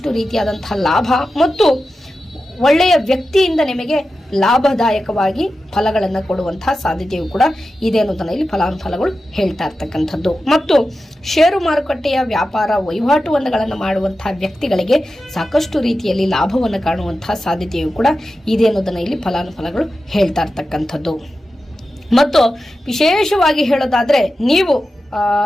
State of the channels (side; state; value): both; normal; correlation 0.92